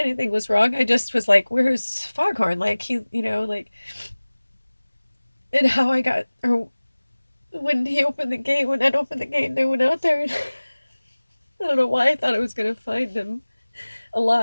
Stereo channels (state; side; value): inverted; both; correlation -1.00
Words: was wrong. I just was like, "Where's Foghorn?" Like like, and how I got, or when he opened the gate, when Ed opened the gate, and I went out there, and I don't know why I thought I was gonna find him